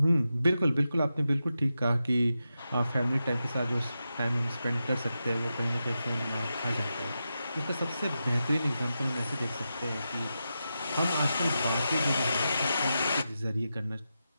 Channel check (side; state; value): both; inverted; correlation -0.89